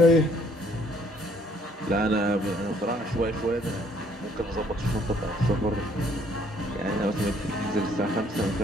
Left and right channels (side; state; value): both; normal; correlation 0.63